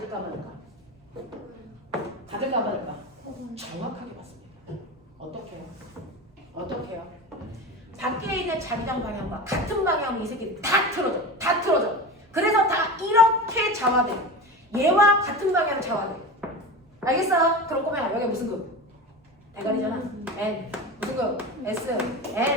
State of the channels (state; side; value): normal; both; correlation 0.28